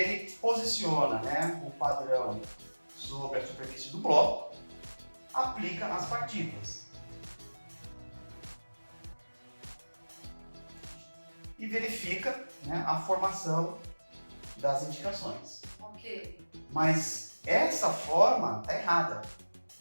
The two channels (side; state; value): both; inverted; correlation -1.00